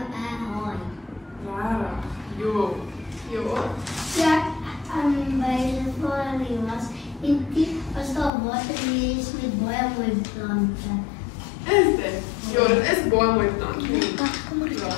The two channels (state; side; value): drops out; right; at 8.3 s